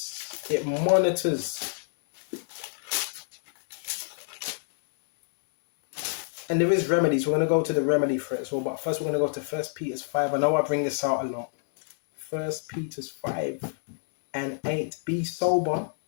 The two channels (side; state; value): right; silent; digital silence